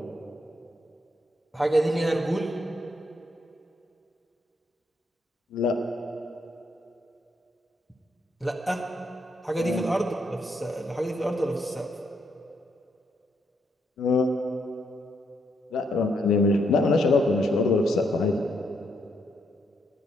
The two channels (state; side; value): normal; both; correlation 0.76